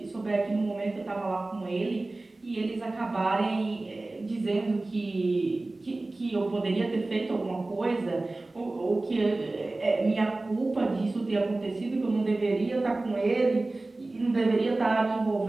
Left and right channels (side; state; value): left; quieter; 3.0 dB